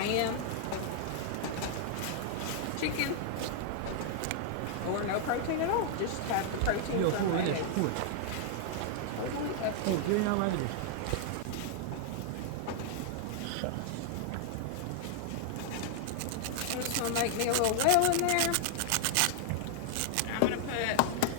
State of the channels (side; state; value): both; different; correlation 0.00